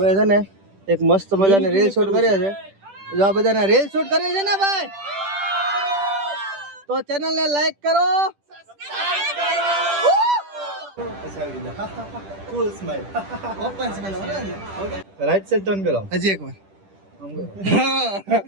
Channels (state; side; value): late; left; 10 ms